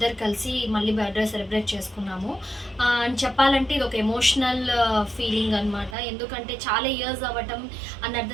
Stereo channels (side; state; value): left; drops out; at 6.0 s